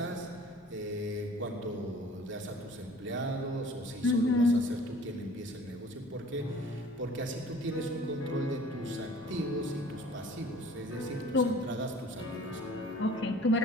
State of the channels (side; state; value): both; normal; correlation 0.49